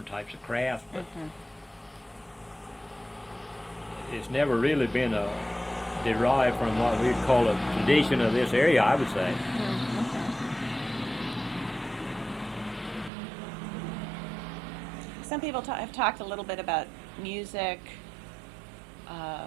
types of craft, but it's never really been derived from what we'd call a tradition of this area, I would say. Some people have talked a little bit about music,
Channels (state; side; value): drops out; left; at 13.1 s